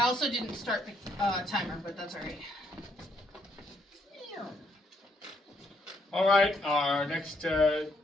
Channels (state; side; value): normal; both; correlation 0.72